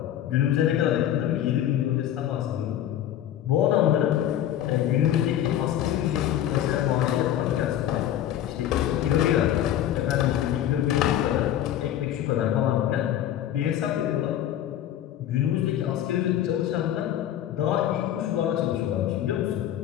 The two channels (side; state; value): right; quieter; 11.4 dB